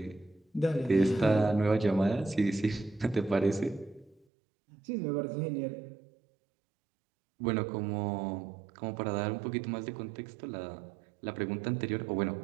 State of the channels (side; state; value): left; drops out; at 4.2 s